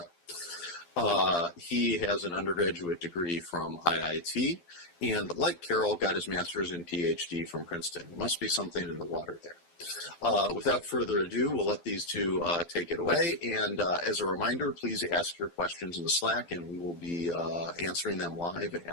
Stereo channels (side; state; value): right; late; 12 ms